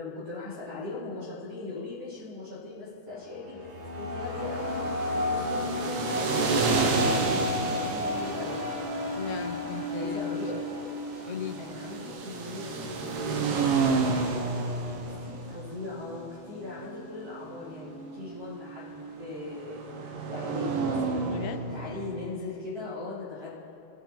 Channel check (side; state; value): left; late; 18 ms